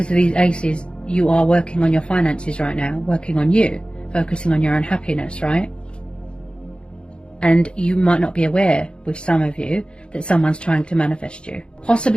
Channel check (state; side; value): late; right; 0.054 ms